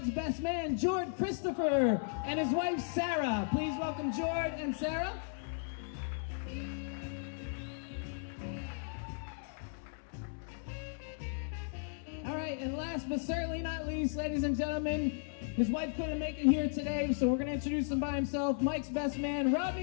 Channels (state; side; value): silent; right; digital silence